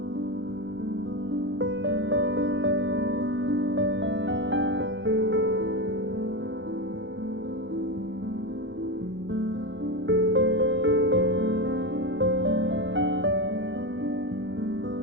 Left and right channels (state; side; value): late; left; 0.54 ms